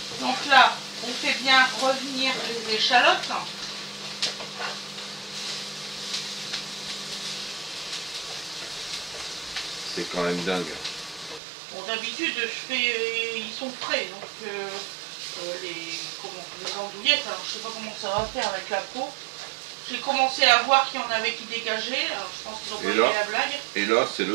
Donc là, on fait bien revenir les échalotes. C'est quand même dingue. Bon, d'habitude, ils sont frais, donc les andouillettes, alors je sais pas comment ça va faire avec la peau. J'ai commencé à voir qu'il y en avait qui dégageaient, alors je pense qu'ils ont pas aimé la blague. Et là, c'est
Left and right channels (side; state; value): left; drops out; at 11.4 s